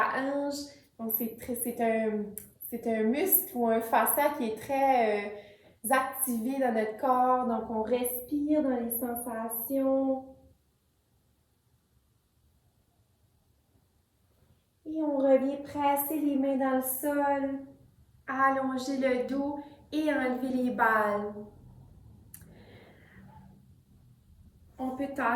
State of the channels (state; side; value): identical; both; correlation 1.00